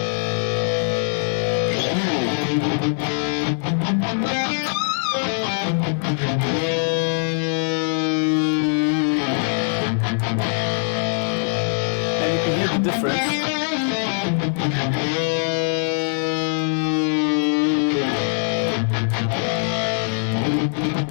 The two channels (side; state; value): right; silent; 61 dB below the other